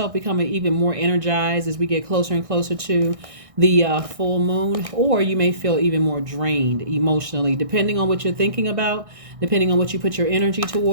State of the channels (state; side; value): late; left; 1.6 ms